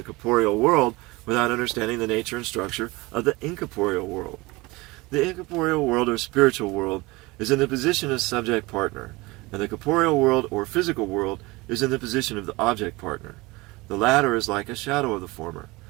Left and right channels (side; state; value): left; quieter; 22.7 dB